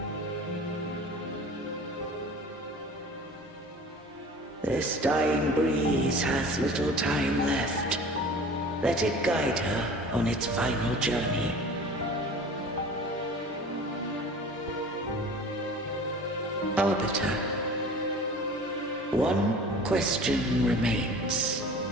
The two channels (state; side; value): normal; both; correlation 0.42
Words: This dying breeze hath little time left. Let it guide her on its final journey. Arbiter, one question remains.